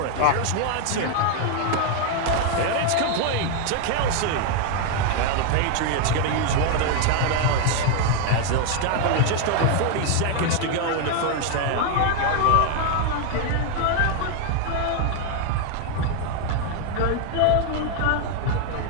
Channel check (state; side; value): different; both; correlation 0.00